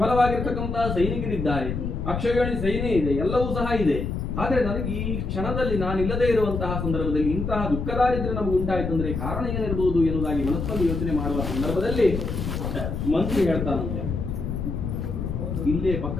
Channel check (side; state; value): left; noise; rumble, 3 dB below the sound